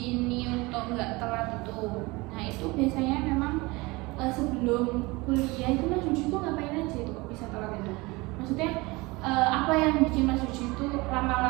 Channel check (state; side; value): quieter; left; 23.5 dB